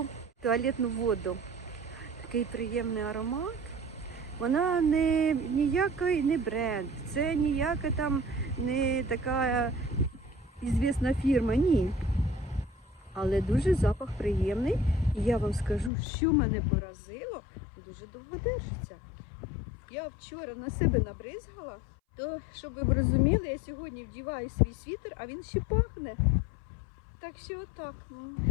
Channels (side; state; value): right; drops out; at 15.9 s